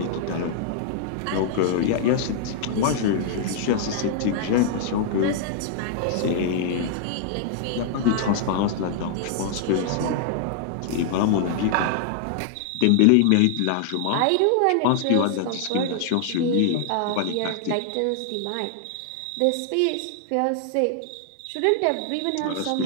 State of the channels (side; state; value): both; different; correlation -0.01